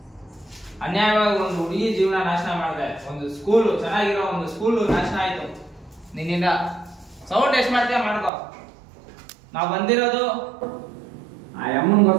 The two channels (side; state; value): left; drops out; at 8.3 s